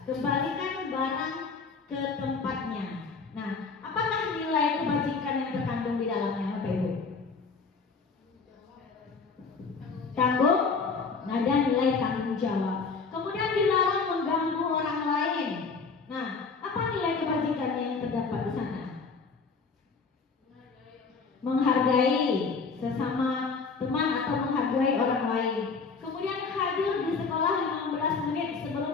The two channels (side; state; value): right; quieter; 4.8 dB